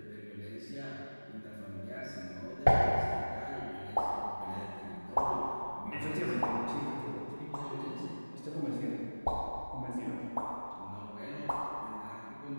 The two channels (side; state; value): both; inverted; correlation -1.00